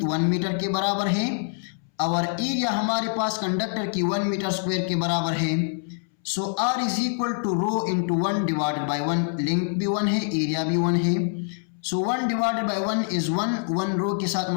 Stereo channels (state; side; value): silent; right; 62 dB below the other